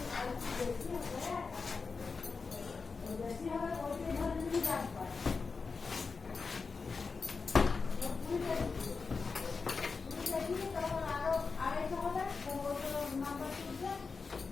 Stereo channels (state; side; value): quieter; right; 4.7 dB